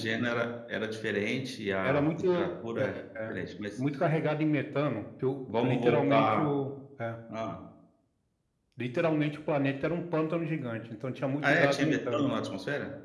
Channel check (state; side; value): identical; both; correlation 1.00